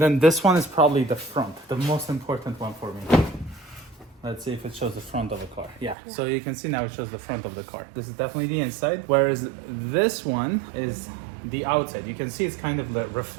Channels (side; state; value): left; drops out; at 6.0 s